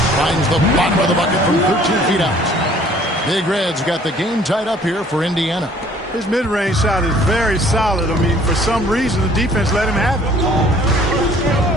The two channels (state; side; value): normal; both; correlation 0.56